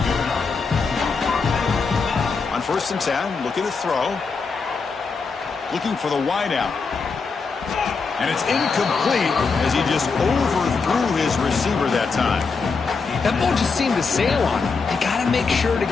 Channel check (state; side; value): quieter; right; 4.8 dB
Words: On 1st and 10, looking to throw. Looking for the wideout. And it's incomplete as he just overthrew his receiver that time. That ball just seemed to sail on him. You got to make sure to